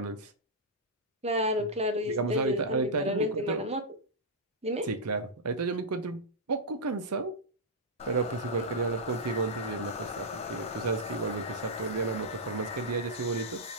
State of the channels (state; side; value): normal; both; correlation -0.09